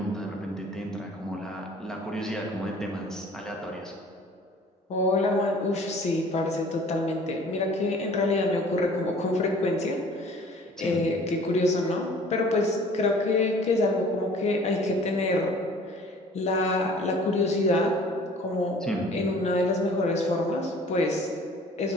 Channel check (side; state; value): both; normal; correlation 0.50